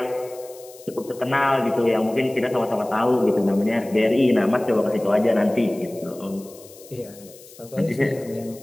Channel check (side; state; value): left; noise; hiss, 21 dB below the sound